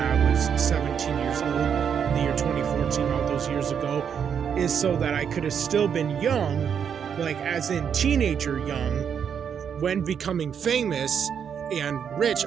was 17 years old, in the year 2014, all those years ago, is so that I could have still been young, like, as in teenager young, when becoming famous, and rich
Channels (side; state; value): left; quieter; 7.6 dB